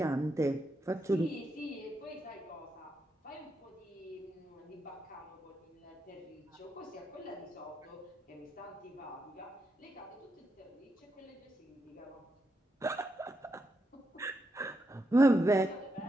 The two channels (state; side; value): normal; both; correlation 0.83